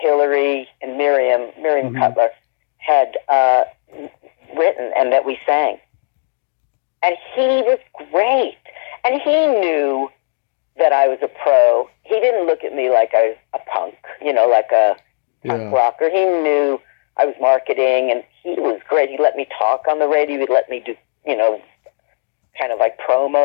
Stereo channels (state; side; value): silent; right; digital silence